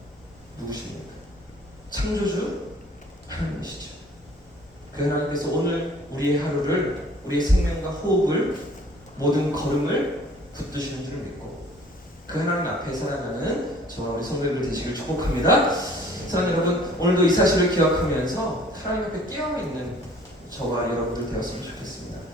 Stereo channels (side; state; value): both; normal; correlation 0.53